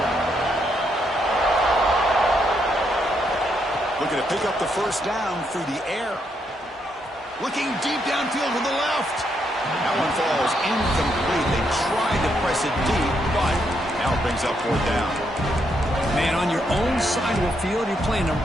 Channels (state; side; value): normal; both; correlation 0.77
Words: Looking to pick up the first down through the air. Looking deep downfield to the left. That one falls incomplete. They tried to press it deep, but now it brings up fourth down. Man, on your own side of the field, you're playing a